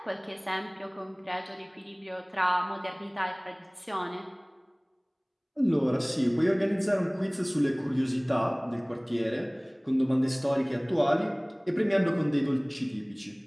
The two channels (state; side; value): identical; both; correlation 1.00